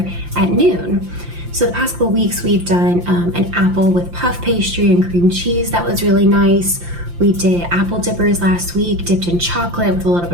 at noon. So the past couple of weeks, we've done an apple with puff pastry and cream cheese. That was really nice. We did apple dippers last week, dipped in chocolate with a little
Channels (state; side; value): late; left; 5.8 ms